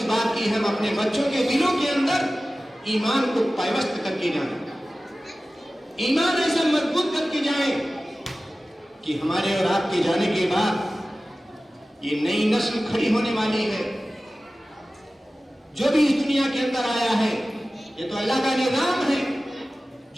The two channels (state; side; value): normal; both; correlation 0.96